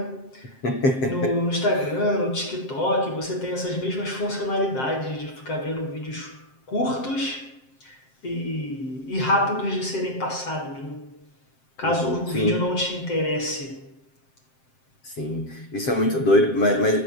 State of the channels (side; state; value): right; late; 7.6 ms